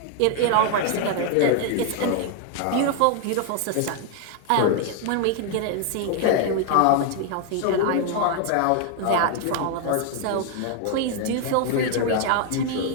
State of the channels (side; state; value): both; different; correlation 0.00